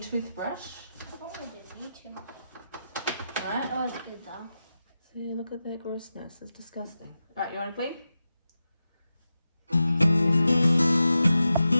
Oh, I didn't need to. Alright, Oh, it's good though. see, look at that grossness, it's disgusting. Alright, you want to clean?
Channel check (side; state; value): both; inverted; correlation -0.91